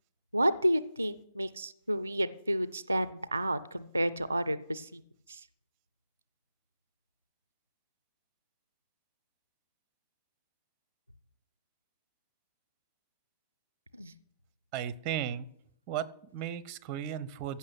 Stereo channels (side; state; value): both; inverted; correlation -0.84